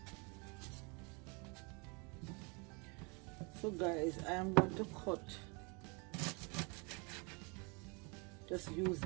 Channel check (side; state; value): left; quieter; 31.6 dB